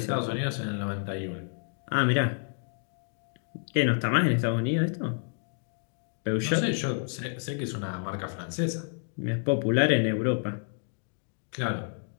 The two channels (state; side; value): silent; right; 58 dB below the other